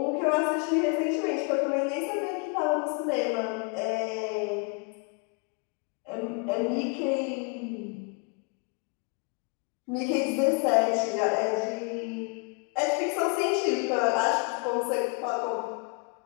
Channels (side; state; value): right; quieter; 34.0 dB